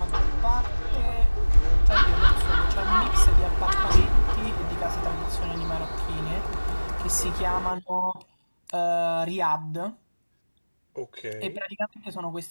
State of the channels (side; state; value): both; inverted; correlation -1.00